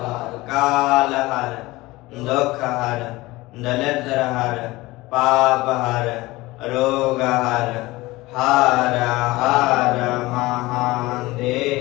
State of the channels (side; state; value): right; quieter; 20.1 dB